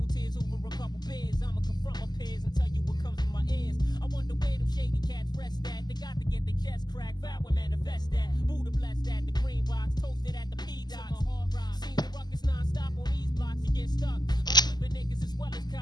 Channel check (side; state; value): right; late; 0.20 ms